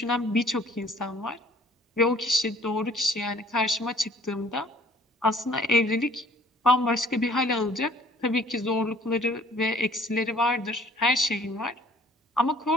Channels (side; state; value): both; normal; correlation 0.56